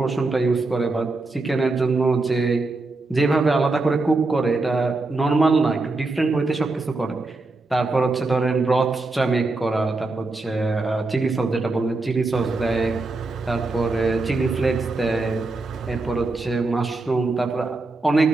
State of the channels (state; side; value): quieter; left; 3.3 dB